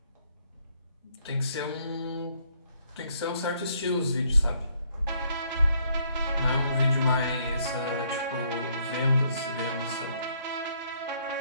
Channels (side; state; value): both; inverted; correlation -0.68